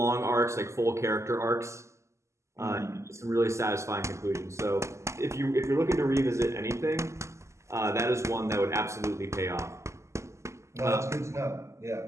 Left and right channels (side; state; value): left; late; 0.14 ms